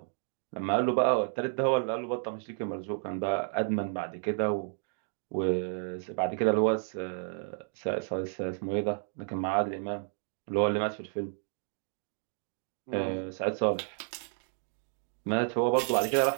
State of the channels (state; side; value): silent; left; 57 dB below the other